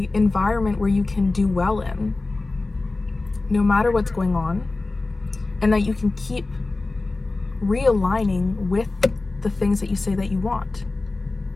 environment where you can do well in, no matter what's going on, and that you can keep realigning with the things that you say that you want.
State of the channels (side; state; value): right; quieter; 3.3 dB